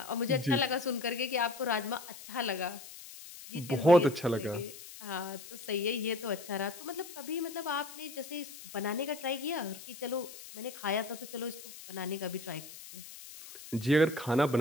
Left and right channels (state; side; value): noise; left; hiss, 15 dB below the sound